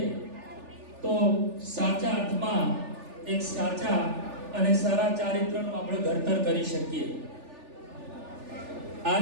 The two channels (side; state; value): left; late; 3.4 ms